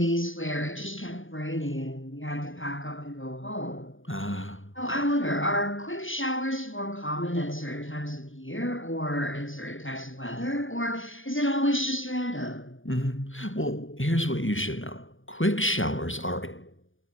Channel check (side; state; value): right; late; 0.58 ms